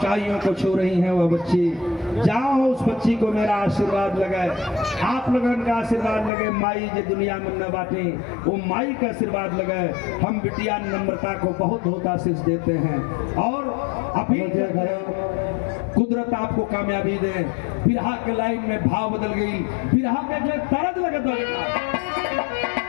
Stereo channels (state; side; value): drops out; right; at 6.3 s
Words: को छू रही हैं वह बच्ची। जाओ उस बच्ची को मेरा आशीर्वाद लगे, आप लोगों का आशीर्वाद लगे। माई जो दुनिया में न बाटे वो माई का आशीर्वाद लगे। हम बिटिया नम्रता को बहुत बहुत आशीष देते हैं और अभी कुदरत आपको कामयाबी दे। बिरहा के लाइन में भाव बदल गई, बिरहा के जो तरज लगे तो